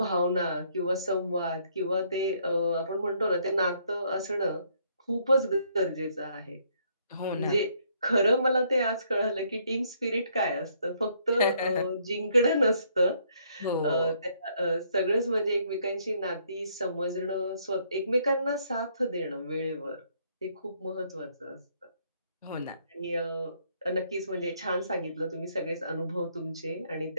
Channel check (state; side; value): inverted; both; correlation -0.68